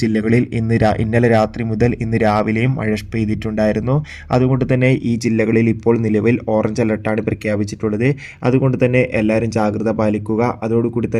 ജില്ലകളിൽ ഇന്നലെ രാത്രി മുതൽ ഇന്ന് രാവിലെയും മഴ പെയ്തിട്ടുണ്ടായിരുന്നു. അതുകൊണ്ട് തന്നെ ഈ ജില്ലകളിൽ ഇപ്പോൾ നിലവിൽ ഓറഞ്ച് അലർട്ടാണ് പ്രഖ്യാപിച്ചിട്ടുള്ളത്. അതുകൊണ്ട് തന്നെ എല്ലാവരും ജാഗ്രത പാലിക്കുക. അതോടുകൂടി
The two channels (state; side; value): identical; both; correlation 1.00